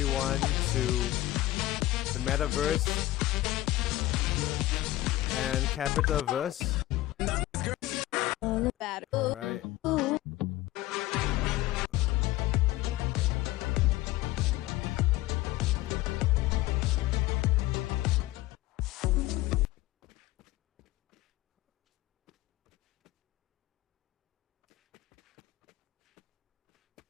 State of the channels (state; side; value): quieter; right; 16.8 dB